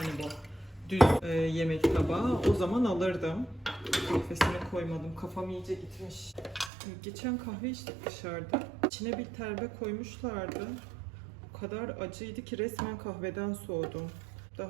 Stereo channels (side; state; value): left; drops out; at 6.7 s